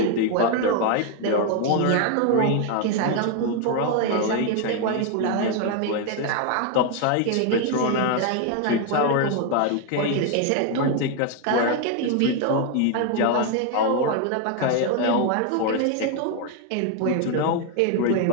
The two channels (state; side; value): different; both; correlation 0.01